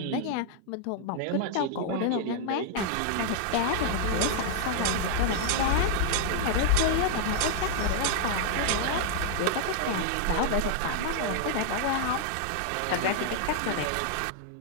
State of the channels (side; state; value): both; different; correlation -0.01